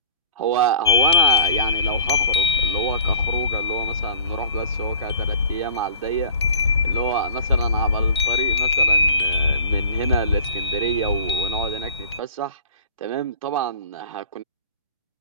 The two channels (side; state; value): both; inverted; correlation -0.46